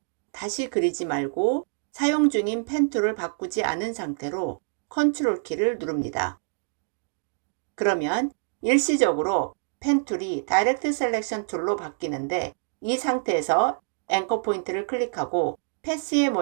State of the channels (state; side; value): silent; left; digital silence